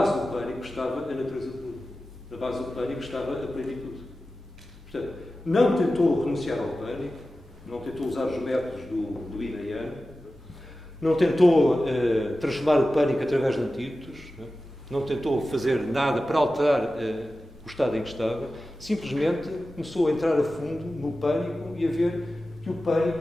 do pânico, estava a natureza de Buda. Na base do pânico estava a plenitude. Portanto, não tentou renunciar ao pânico, não tentou usar os métodos do Yin e Yang, não tentou transformar o pânico através de antídotos, não tentou fazer nada para alterar o estado em que estava, simplesmente começou a entrar a fundo no pânico e a ver que o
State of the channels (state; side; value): normal; both; correlation 0.94